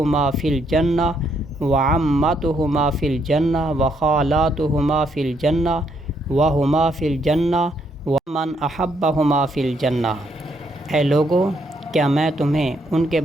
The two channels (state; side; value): normal; both; correlation 0.73